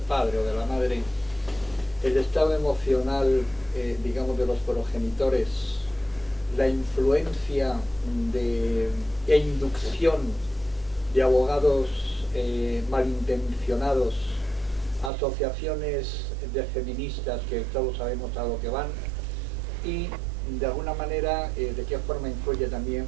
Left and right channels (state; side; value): drops out; left; at 15.1 s